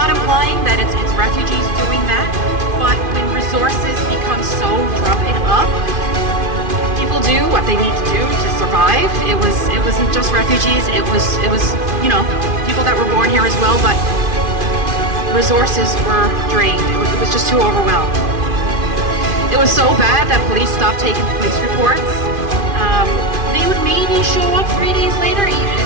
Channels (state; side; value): late; left; 2.5 ms